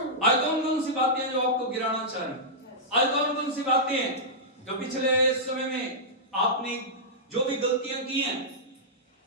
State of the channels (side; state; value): both; normal; correlation -0.12